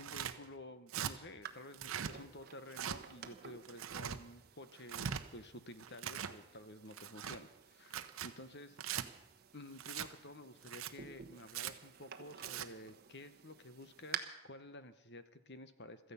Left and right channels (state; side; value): quieter; left; 5.9 dB